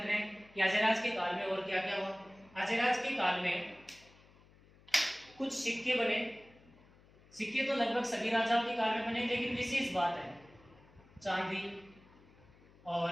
रहे हैं कि अजयराज के काल में और क्या क्या हुआ। अजयराज के काल में कुछ सिक्के बने। सिक्के तो लगभग सभी राजाओं के काल में बने, लेकिन विशेष बात है चांदी, और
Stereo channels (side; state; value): left; noise; hum, 26 dB below the sound